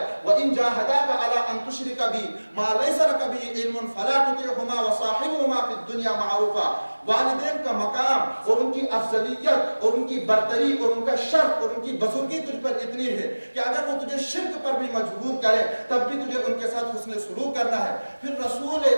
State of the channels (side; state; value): both; inverted; correlation -1.00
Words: وَإِن جَاهَدَاكَ عَلَىٰ أَن تُشْرِكَ بِي مَا لَيْسَ لَكَ بِهِ عِلْمٌ فَلَا تُطِعْهُمَا وَصَاحِبْهُمَا فِي الدُّنْيَا مَعْرُوفًا۔ والدین کا مقام اور ان کی افضلیت اور ان کی برتری اور ان کا شرف اور ان کی بزرگی تجھ پر اتنی ہے کہ اگر وہ تجھے شرک پر بھی مجبور کرے تب بھی تجھے ان کے ساتھ حسن سلوک کرنا ہے۔ پھر رسول